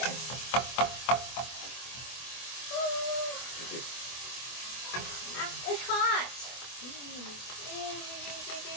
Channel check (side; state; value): right; late; 24 ms